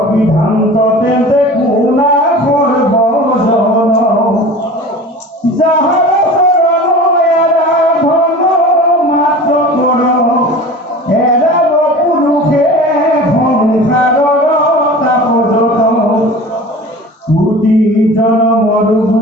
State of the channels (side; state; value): both; normal; correlation 0.38